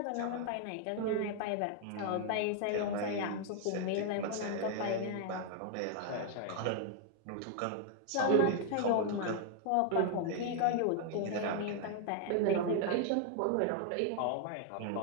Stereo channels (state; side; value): different; both; correlation 0.00